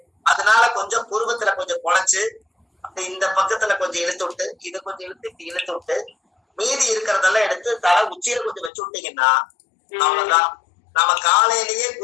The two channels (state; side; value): drops out; right; at 8.7 s